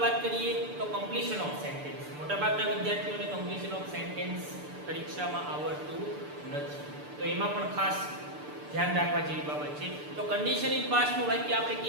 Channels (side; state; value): left; late; 6.8 ms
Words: વાત કરીએ તો કમ્પ્લીશન ઓફ સેન્ટેન્સ. મોટાભાગના વિદ્યાર્થીઓને કમ્પ્લીશન ઓફ સેન્ટેન્સ પરીક્ષામાં આવડતું નથી, તો એમાં પણ ખાસ ધ્યાન રાખવા જેવી બાબત છે. તો કન્ડિશન ઇન પાસ્ટનું વાક્ય આપણે